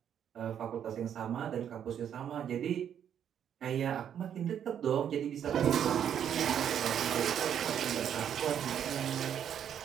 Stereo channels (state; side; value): quieter; left; 9.2 dB